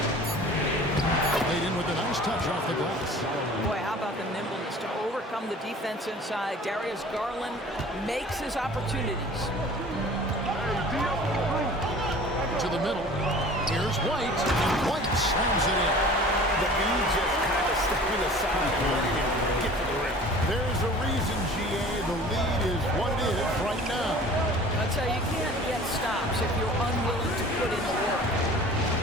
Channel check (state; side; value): normal; both; correlation 0.45